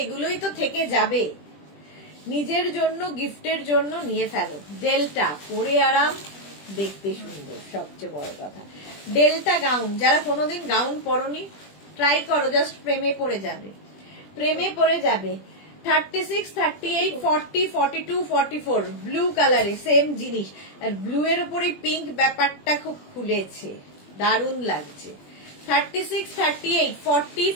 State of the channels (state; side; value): late; right; 20 ms